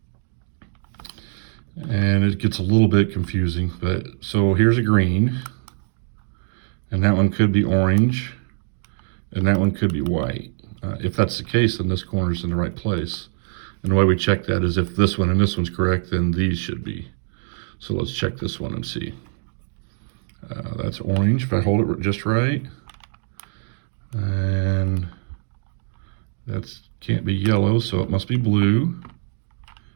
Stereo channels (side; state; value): left; silent; digital silence